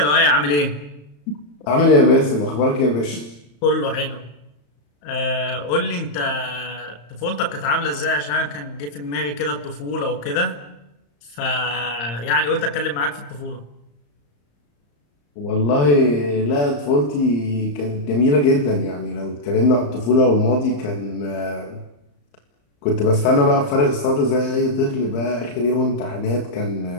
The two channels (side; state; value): right; late; 34 ms